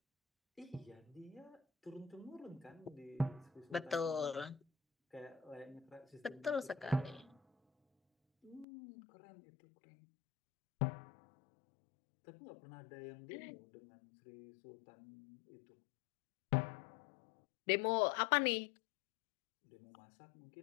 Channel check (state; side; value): drops out; right; at 8.7 s